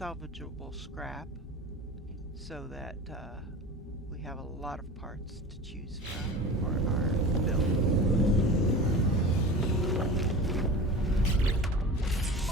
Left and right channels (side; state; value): both; normal; correlation 0.34